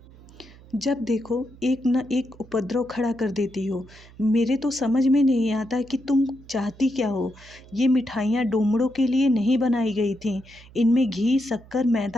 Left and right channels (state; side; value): noise; right; hum, 22 dB below the sound